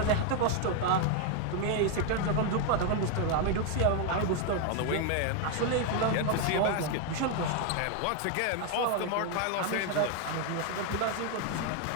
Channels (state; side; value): different; both; correlation 0.01